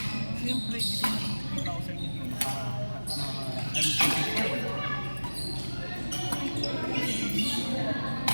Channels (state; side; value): inverted; both; correlation -1.00